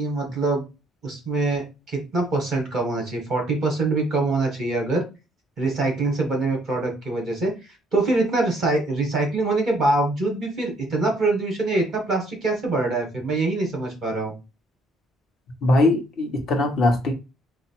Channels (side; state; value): both; normal; correlation 0.66